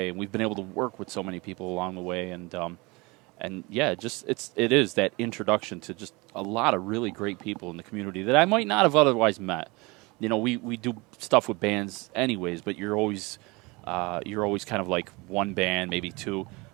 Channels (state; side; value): quieter; left; 25.1 dB